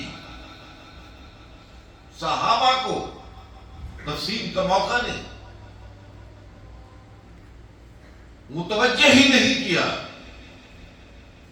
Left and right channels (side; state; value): both; identical; correlation 1.00